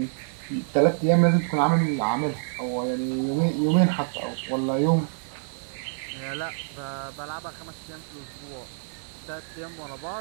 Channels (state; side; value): silent; left; 60 dB below the other